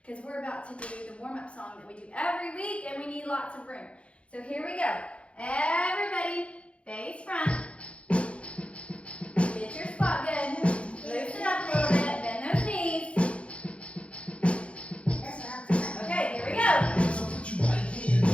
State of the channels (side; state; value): right; late; 0.061 ms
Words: because we're about to do the warm-up song that we do every week and we need lots of room. So here we go. Everybody, face front. Get your spot good. Loosen up a little bit. Bend those knees. Okay, here we go. So put your right hand